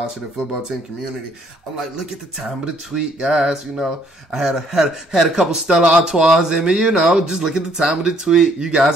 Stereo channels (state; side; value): normal; both; correlation 0.65